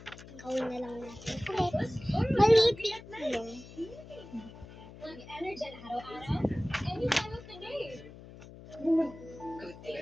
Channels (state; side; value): noise; left; hum, 17 dB below the sound